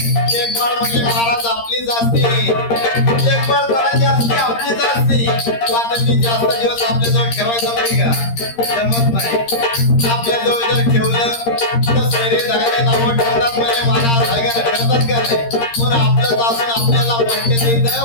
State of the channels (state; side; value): late; right; 13 ms